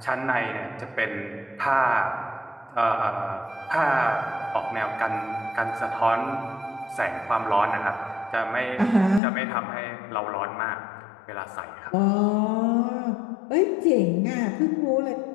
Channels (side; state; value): right; drops out; at 9.2 s